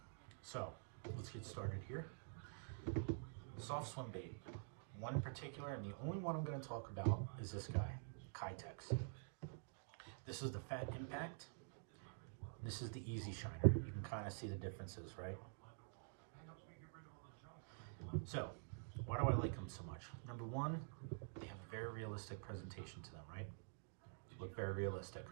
So let's get started here. Soft swim bait. One in particular, and the only one I'm going to talk about is this guy, Kitex. This is the Fat Impact. This is the Easy Shiner. You can kind of see the differences, right? So, why do I like them so much? Number one, they have a very realistic presentation to them, right? Look very realistic.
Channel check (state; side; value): silent; left; digital silence